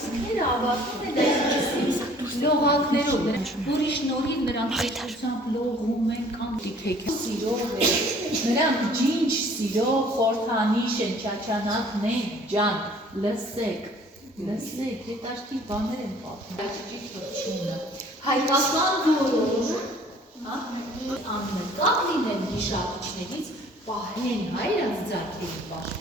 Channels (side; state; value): both; normal; correlation 0.54